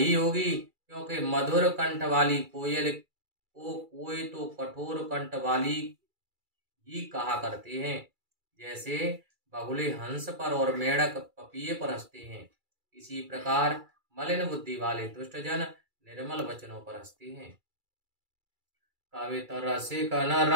होगी, क्योंकि मधुर कंठ वाली कोयल को कोई तो कठोर कंठ वाली ही कहा करते हैं, जैसे बगुले हंस पर और मेढक पपीहे पर हंसते हैं, इसी प्रकार मलिन बुद्धि वाले दुष्टजन निर्मल वचनों पर हंसते हैं। कवित रसिक न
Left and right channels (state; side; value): late; left; 2.3 ms